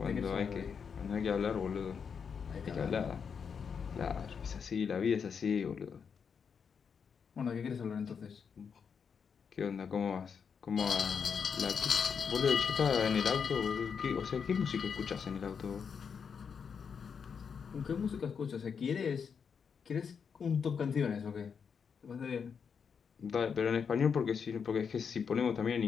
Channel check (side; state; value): right; quieter; 6.5 dB